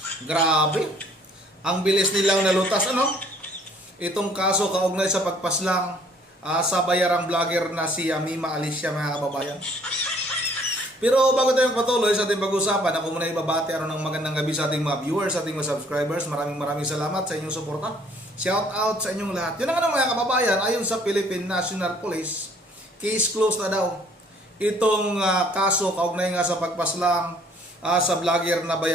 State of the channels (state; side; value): normal; both; correlation 0.60